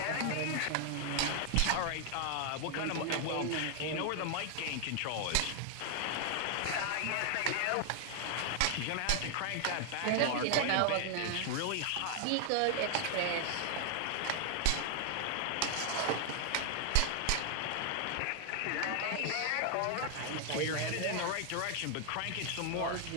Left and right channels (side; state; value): both; different; correlation 0.00